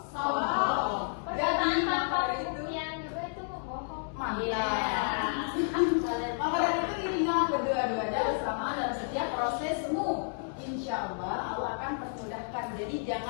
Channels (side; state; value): right; silent; digital silence